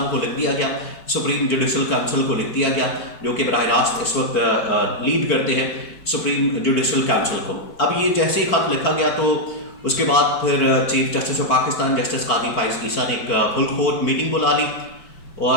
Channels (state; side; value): late; right; 4.5 ms